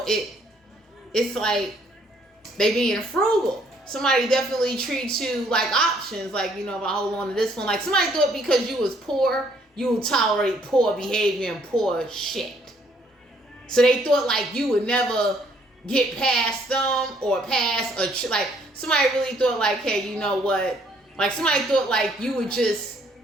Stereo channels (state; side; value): normal; both; correlation 0.65